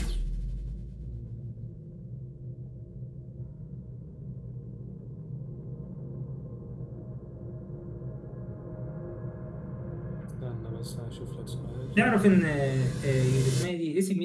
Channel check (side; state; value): both; identical; correlation 1.00